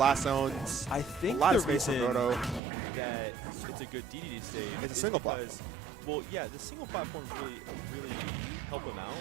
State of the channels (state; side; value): drops out; left; at 2.6 s